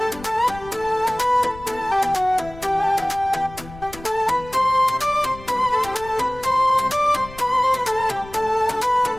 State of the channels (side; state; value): left; noise; rumble, 18 dB below the sound